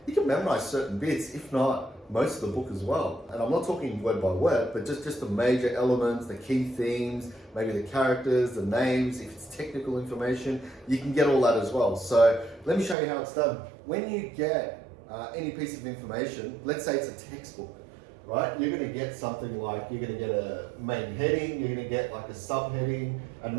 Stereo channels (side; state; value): left; drops out; at 13.0 s